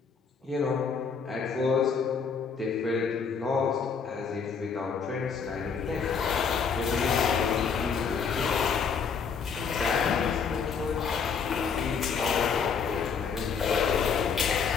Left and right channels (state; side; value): quieter; right; 6.0 dB